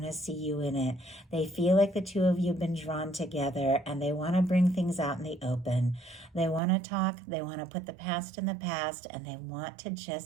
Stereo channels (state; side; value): drops out; left; at 6.6 s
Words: to see you in it. They feel like the two of you have been drawn together, and they want to bring things out in the open. They want to talk, they want to put the past in the past, and they want to